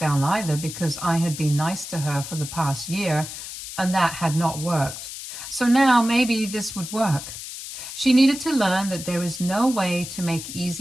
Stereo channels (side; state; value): left; noise; hiss, 10 dB below the sound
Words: either because I had been nice to her for the past year and that had not worked. So now maybe this would work. She needed to learn that there is no way to make